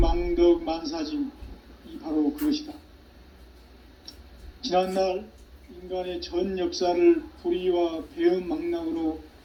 만사짐이 바로 그것이다. 지난날 인간의 전 역사를 불의와 배음 망락으로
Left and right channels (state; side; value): identical; both; correlation 1.00